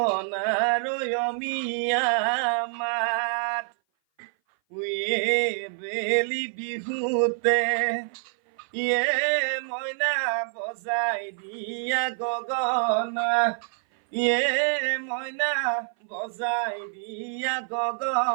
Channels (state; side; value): silent; left; 57 dB below the other